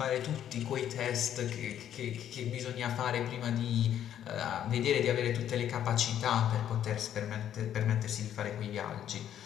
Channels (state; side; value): quieter; right; 10.4 dB